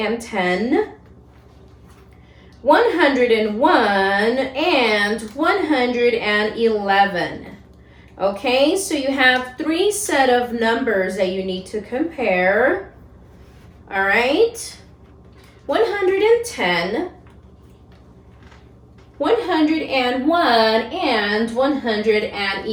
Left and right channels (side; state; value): both; identical; correlation 1.00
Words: 101, and 111. Okay, so you have three set of numbers that you need to compare. All right, 110, 101, and